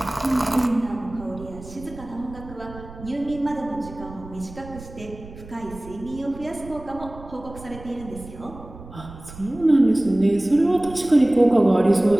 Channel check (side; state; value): right; noise; rumble, 16 dB below the sound